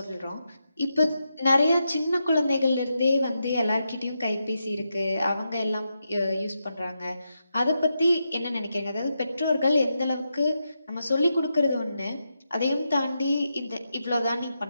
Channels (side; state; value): both; inverted; correlation -0.86